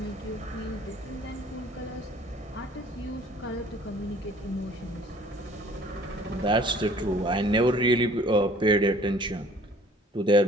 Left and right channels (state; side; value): normal; both; correlation 0.53